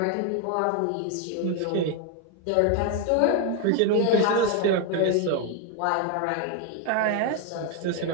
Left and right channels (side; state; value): both; different; correlation 0.01